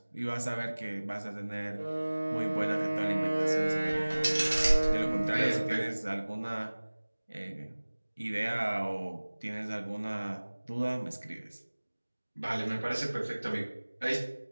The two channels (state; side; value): inverted; both; correlation -1.00